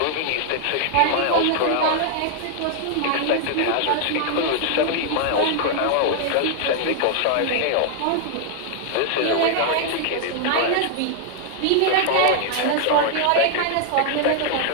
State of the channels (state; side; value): different; both; correlation 0.00